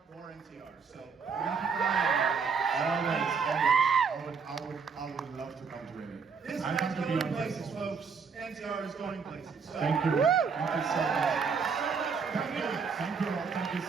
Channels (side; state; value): left; quieter; 5.6 dB